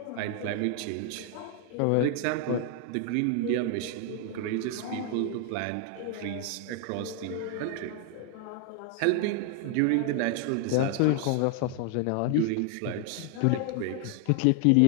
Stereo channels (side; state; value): both; different; correlation 0.00